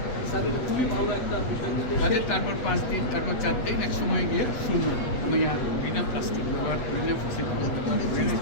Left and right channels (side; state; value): right; late; 8.3 ms